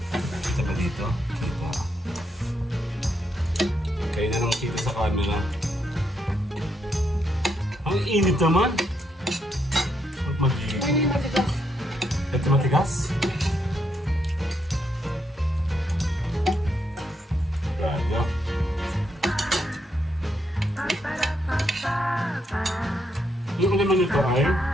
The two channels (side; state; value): both; normal; correlation 0.78